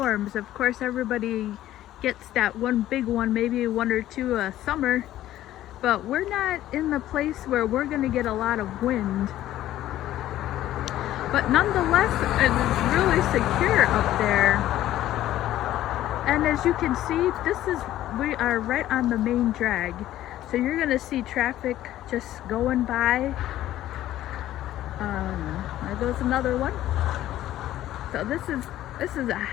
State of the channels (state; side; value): quieter; right; 13.6 dB